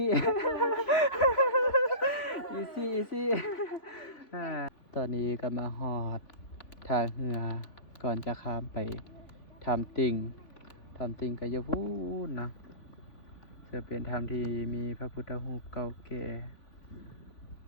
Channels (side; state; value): right; late; 3.5 ms